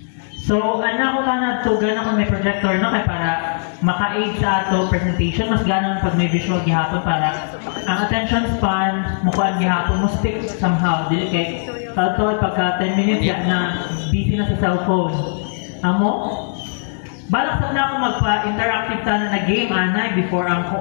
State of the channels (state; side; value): silent; right; digital silence